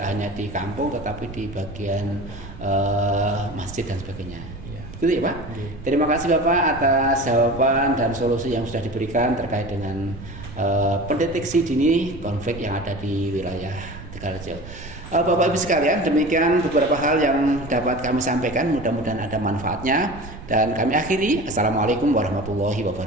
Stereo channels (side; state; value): right; noise; rumble, 14 dB below the sound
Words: hanya di kampung tetapi di bagian masjid dan sebagainya. Iya. Gitu ya Pak. Iya. Terima kasih Bapak atas jawaban dan solusi yang sudah diberikan terkait dengan pendeteksi dini konflik yang ada di wilayah Tegalrejo. Bapak Ibu sekalian, demikian beberapa hal yang dapat kami sampaikan. Mudah-mudahan ada manfaatnya dan kami akhiri. Assalamualaikum warahmatullahi